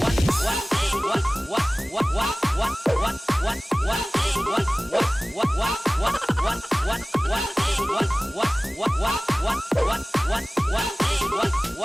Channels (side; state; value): both; normal; correlation 0.98